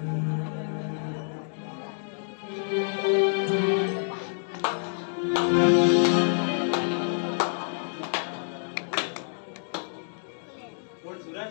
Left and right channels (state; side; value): silent; right; digital silence